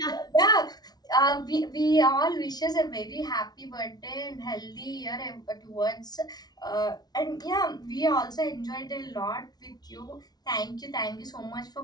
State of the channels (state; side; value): late; right; 0.19 ms